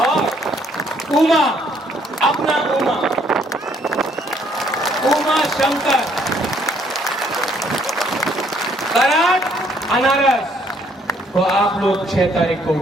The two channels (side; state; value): both; normal; correlation 0.66